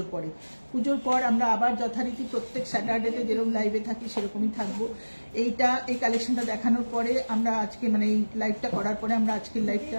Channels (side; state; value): both; inverted; correlation -1.00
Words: পরে। পুজোর পর আমরা আবার যথারীতি প্রত্যেক স্যাটারডেতে যেরকম লাইভে থাকি সেরকমই থাকবো। এই কালেকশনটা দেখানোর পরে আমরা আজকে, মানে এই লাইভটা করার পরে আমরা আজকের লাইভটা,